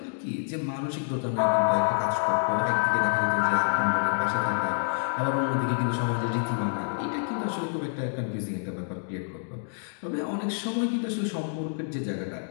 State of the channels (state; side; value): silent; right; digital silence